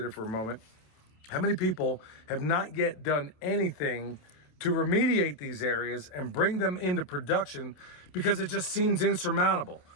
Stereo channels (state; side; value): late; right; 28 ms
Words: for a moment, how many people have not yet done anything to remediate these areas and bring them into production because it just seems insurmountable.